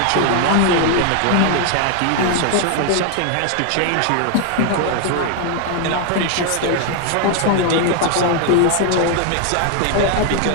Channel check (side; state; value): both; different; correlation 0.00